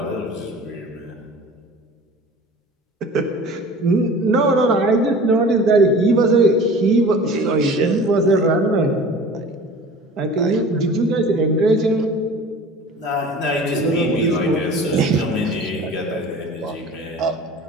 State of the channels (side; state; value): both; normal; correlation 0.41